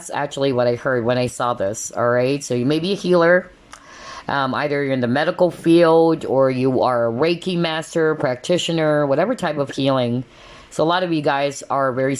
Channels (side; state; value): both; identical; correlation 1.00